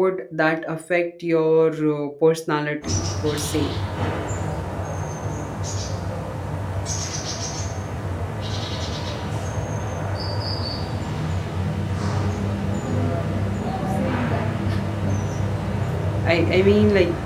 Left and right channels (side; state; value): both; identical; correlation 1.00